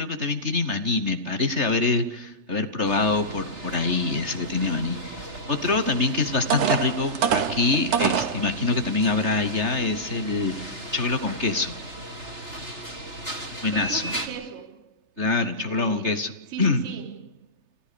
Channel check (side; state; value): left; late; 3.3 ms